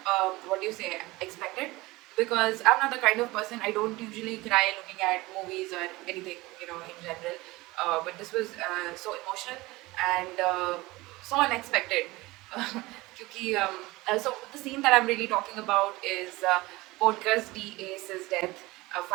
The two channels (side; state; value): left; quieter; 20.9 dB